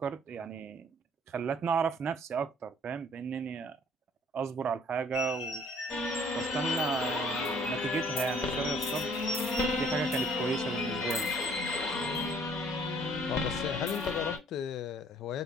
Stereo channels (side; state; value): both; normal; correlation 0.58